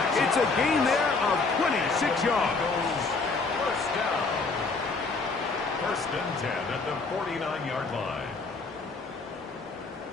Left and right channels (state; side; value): quieter; right; 4.0 dB